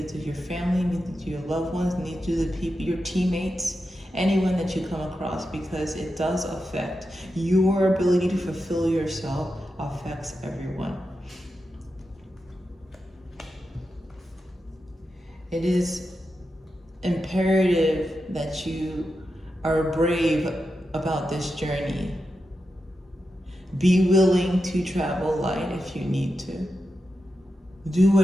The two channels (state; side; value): normal; both; correlation 0.89